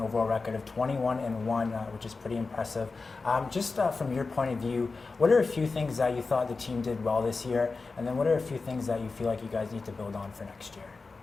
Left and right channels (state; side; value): quieter; right; 4.1 dB